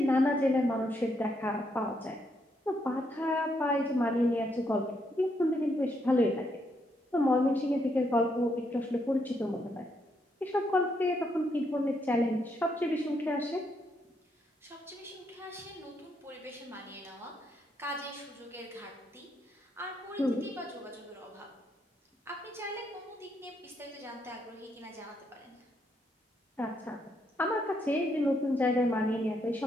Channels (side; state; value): both; normal; correlation 0.76